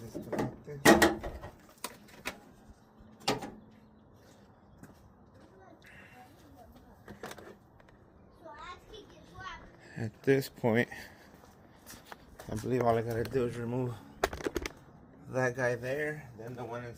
Disconnect this. At this point, I believe all I gotta do is remove that guy there, then the one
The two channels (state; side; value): identical; both; correlation 1.00